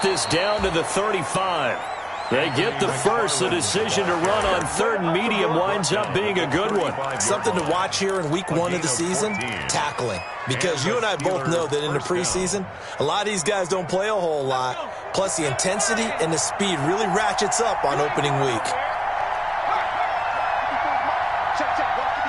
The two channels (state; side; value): identical; both; correlation 1.00